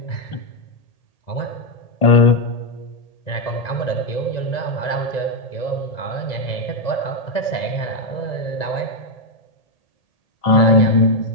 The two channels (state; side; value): late; right; 1.9 ms